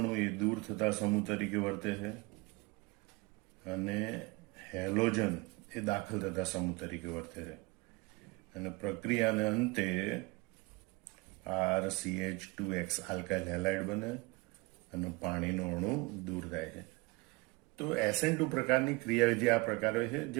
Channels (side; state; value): left; quieter; 24.3 dB